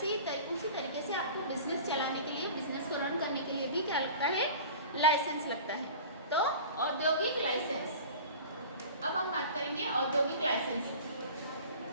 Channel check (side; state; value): both; inverted; correlation -0.39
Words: ही उसी तरीके से आपको बिजनेस चलाने के लिए, बिजनेस को रन करने के लिए भी क्या लगता है, लाइसेंस लगता है। तो औद्योगिक लाइसेंस, अब हम बात करेंगे औद्योगिक लाइसेंस,